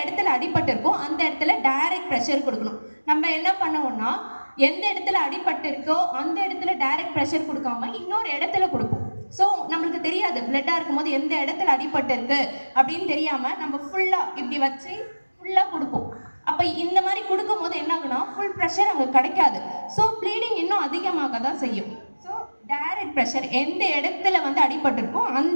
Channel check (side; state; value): both; inverted; correlation -1.00